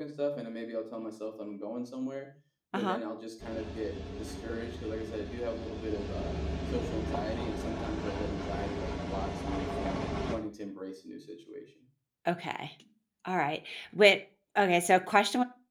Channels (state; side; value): identical; both; correlation 1.00